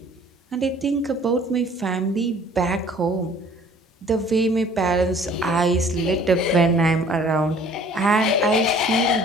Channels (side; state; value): both; normal; correlation 0.53